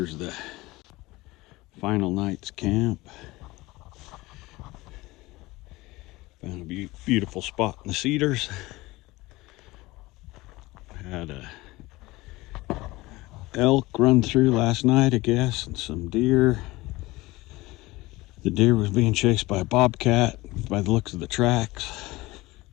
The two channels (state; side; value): quieter; right; 20.5 dB